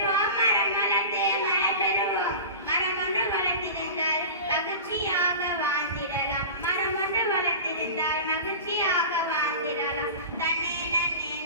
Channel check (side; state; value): both; inverted; correlation -0.33